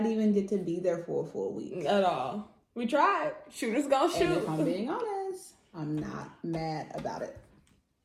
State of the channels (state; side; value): identical; both; correlation 1.00